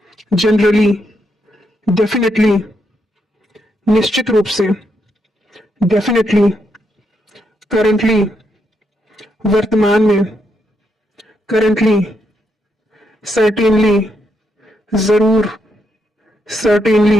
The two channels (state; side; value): normal; both; correlation 0.79